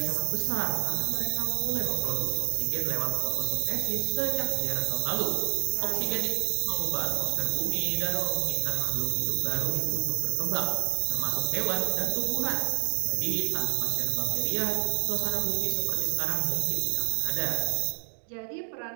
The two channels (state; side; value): silent; left; digital silence